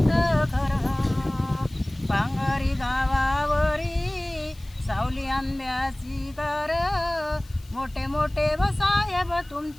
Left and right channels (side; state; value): left; noise; hiss, 26 dB below the sound